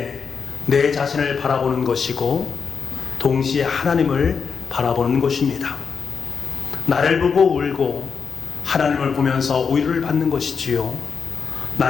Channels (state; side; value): quieter; right; 5.8 dB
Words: 내 자신을 바라보는 것이고 동시에 하나님을 바라보는 것입니다. 나를 보고 울고 하나님을 보면서 위로를 받는 것이지요.